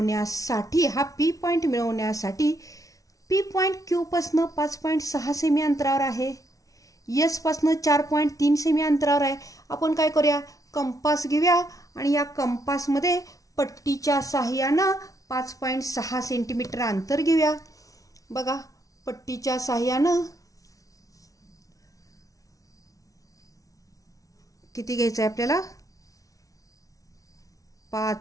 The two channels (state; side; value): late; right; 0.17 ms